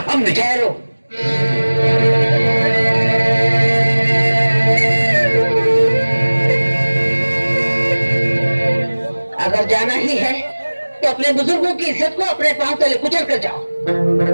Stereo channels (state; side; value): inverted; both; correlation -1.00